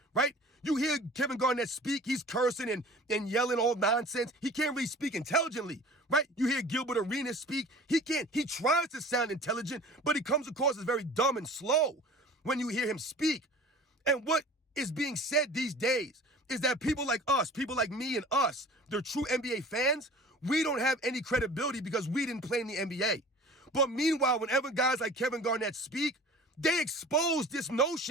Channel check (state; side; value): normal; both; correlation 0.43